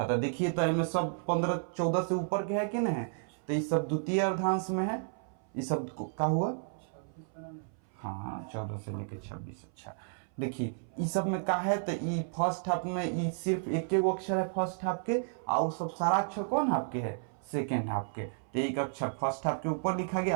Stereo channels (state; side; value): silent; left; 56 dB below the other